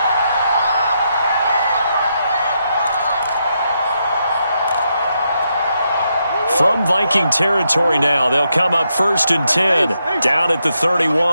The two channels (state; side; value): inverted; both; correlation -0.81